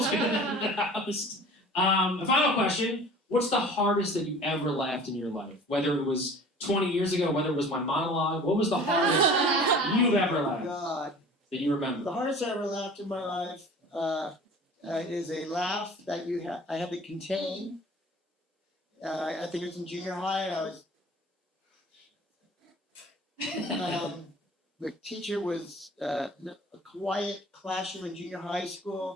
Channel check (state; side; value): normal; both; correlation 0.44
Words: the house. A final question. What's the hardest that you ever laughed in your life? Whether it was 20 years ago, whether it was my monologue, what was the hardest you've ever laughed that you remember? The hardest I ever laughed in my life is a laugh that I had to contain. I think it was in junior high, and I was the teacher was a quiet classroom in junior high